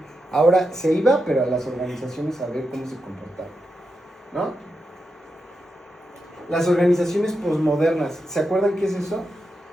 ahora se iba, pero a las organizaciones a ver cómo se comportaban, ¿no? Las organizaciones posmodernas, ¿se acuerdan qué es eso?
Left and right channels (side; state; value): both; normal; correlation 0.87